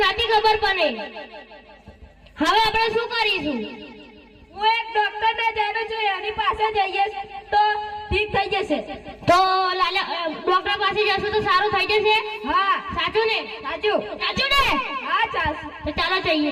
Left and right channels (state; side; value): identical; both; correlation 1.00